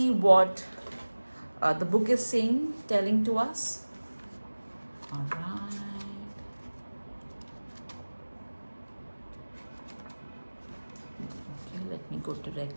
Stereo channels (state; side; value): inverted; both; correlation -1.00